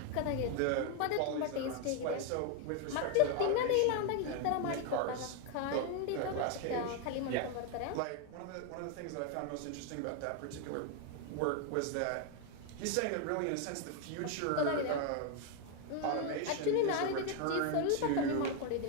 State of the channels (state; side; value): different; both; correlation 0.01